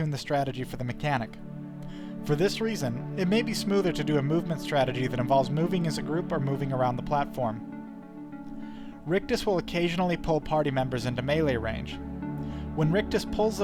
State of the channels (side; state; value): both; identical; correlation 1.00